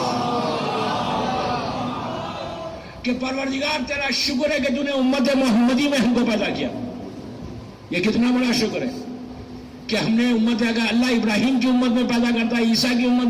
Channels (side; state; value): both; identical; correlation 1.00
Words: کہ پروردگار تیرا شکر ہے کہ تو نے امت محمدی میں ہم کو پیدا کیا. یہ کتنا بڑا شکر ہے کہ ہم نے امت، اگر اللہ ابراہیم کی امت میں پیدا کرتا، عیسیٰ کی امت